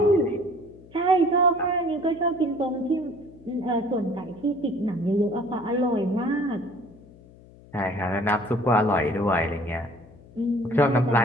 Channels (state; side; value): noise; left; hum, 23 dB below the sound